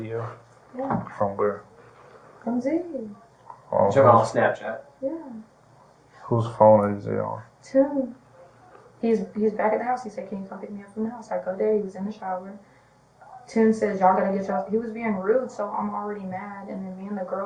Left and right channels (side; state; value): both; identical; correlation 1.00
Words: Yeah. From where? From Z. On Jim on Snapchat. Yeah. whose phone is it on? Tim. He's back at the house. He said, "Can you come pick me up from the house?" I go there. He was in the shower. Tim says, "Y'all gotta get y'all." He was being rude, so I'm already mad. And then me and the